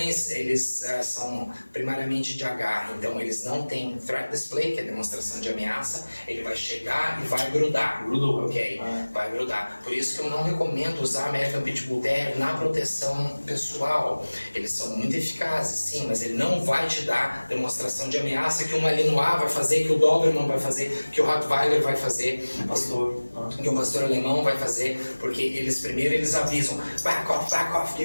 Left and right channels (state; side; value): inverted; both; correlation -1.00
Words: eles são primariamente de agarre, então eles não têm threat display, que é demonstração de ameaça, ele vai chegar e vai grudar. Grudou. Ok, vai grudar. Por isso que eu não recomendo usar American Pitbull Terrier na proteção pessoal. Eles são muito eficazes, sim, mas ele não vai te dar demonstração de ameaça que um Malinois vai fazer, que o Doberman vai fazer, que o Rottweiler vai fazer. Que o pastor alemão vai fazer, porque eles avisam, back off,